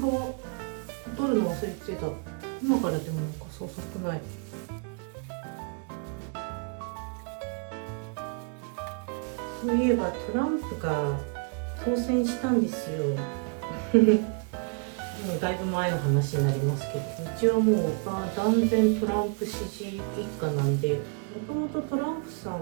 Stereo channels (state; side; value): quieter; left; 37.8 dB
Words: 取るの忘れてた。今からでも遅くない。そういえばトランプが当選したんですよもうだいぶ前の話になりますけど、一応もう断然トランプ支持一家なんで、もともとトランプさん